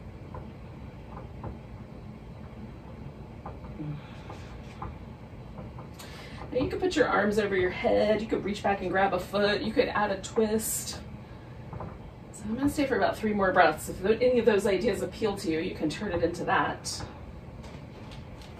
Now you could put your arms over your head. You could reach back and grab a foot. You could add a twist. So I'm going to stay for about 3 more breaths. If any of those ideas appeal to you, you can turn it into that.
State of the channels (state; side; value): identical; both; correlation 1.00